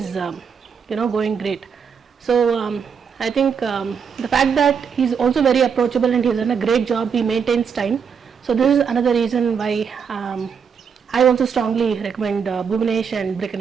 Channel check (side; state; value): left; quieter; 6.6 dB